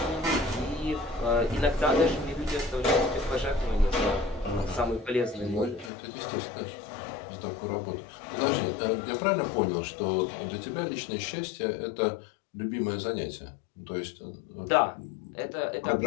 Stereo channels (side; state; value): right; drops out; at 5.9 s